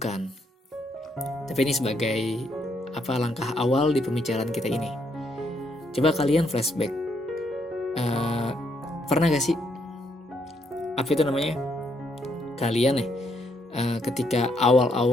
Tapi ini sebagai langkah awal di pembicaraan kita ini. Coba kalian flashback. Pernah gak sih kalian ketika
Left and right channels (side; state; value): both; normal; correlation 0.73